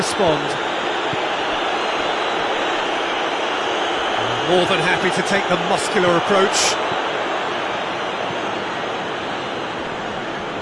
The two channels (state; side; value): identical; both; correlation 1.00